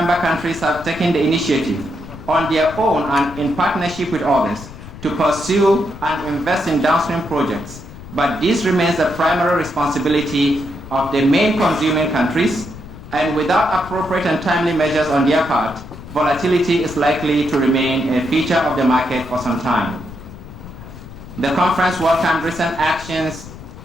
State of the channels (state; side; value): noise; left; rumble, 15 dB below the sound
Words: countries have taken the initiative on their own and in partnership with others to pursue and invest in downstream projects, but this remains the primary responsibility of the main consuming countries, and without appropriate and timely measures on their part, volatility is likely to remain a feature of the market for some time. The conference welcomed recent actions